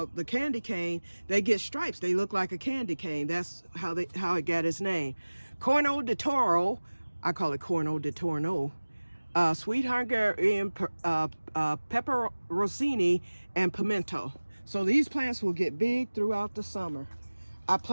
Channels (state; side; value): inverted; both; correlation -1.00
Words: candy cane, they get stripes. They look like a candy cane. That's how it got its name. Corno di Toro, I call it Corno di Torno. Sweet Hungarian pepper rossini and pimento. So these plants will get big throughout the summer. I